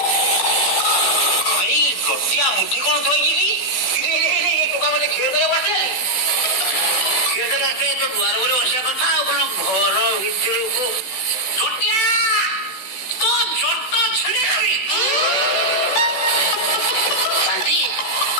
ଭାଇ ଗୋଟିଆ ମୁଠି କଣ ଥୋଇକି ଟୋକା ମତେ କ୍ଷୀର ଦେବାକୁ ଆସିଲାନି। କ୍ଷୀର ଦେବାକୁ ଆସିଲେ ତ ଦୁଆର ଉପରେ ବସିବା କଥା ଆଉ କଣ ଘର ଭିତରକୁ। ଛୋଟିଆ ତ ଜଟ ଛିଡେଇବି। ଶାନ୍ତି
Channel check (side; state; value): right; late; 16 ms